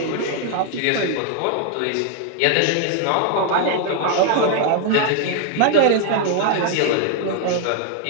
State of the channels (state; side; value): different; both; correlation 0.00